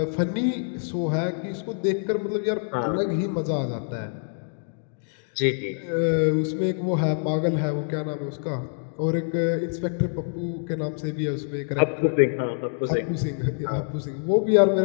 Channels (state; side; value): silent; right; digital silence